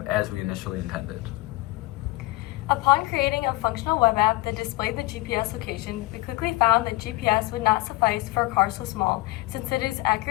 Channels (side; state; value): right; quieter; 20.5 dB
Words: as we initially intended. Upon creating a functional web app that displayed the GPS location, we quickly found that GPS would not suffice for a car so small, since it is